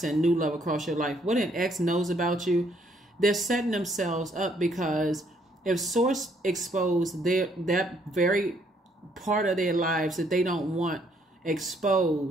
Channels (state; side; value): normal; both; correlation 0.68